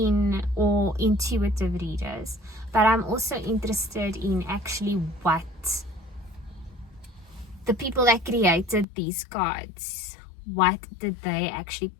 all intuitive readers, but I'm also interested in actually what the people that created these cards, what did they actually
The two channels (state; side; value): drops out; right; at 8.8 s